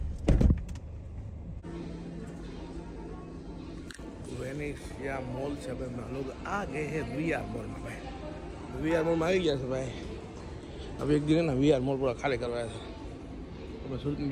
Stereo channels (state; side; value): identical; both; correlation 1.00